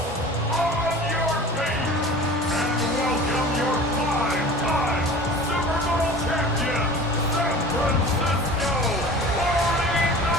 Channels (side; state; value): both; normal; correlation 0.40